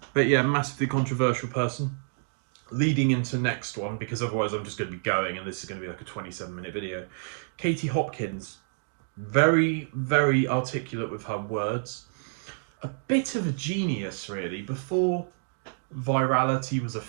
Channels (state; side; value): silent; left; digital silence